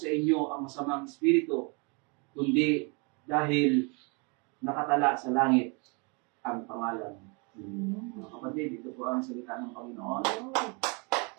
inyo ang masamang espiritu, kundi dahil nakatala sa langit ang pangalan. Mga kapatid, ito po ang salita ng Panginoon.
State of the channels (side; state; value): left; quieter; 32.1 dB